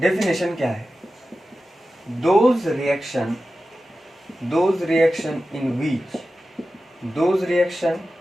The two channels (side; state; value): both; normal; correlation 0.93